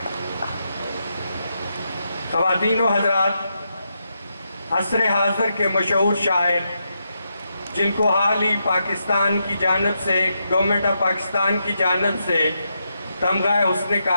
خواتین و حضرات، عصر حاضر کے مشہور شاعر جن کو حال ہی پاکستان کی جانب سے گورنمنٹ آف پاکستان کی جانب سے تمغہ حسن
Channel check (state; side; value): inverted; both; correlation -0.83